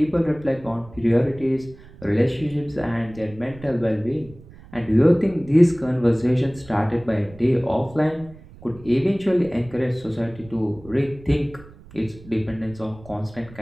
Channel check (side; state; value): right; noise; rumble, 20 dB below the sound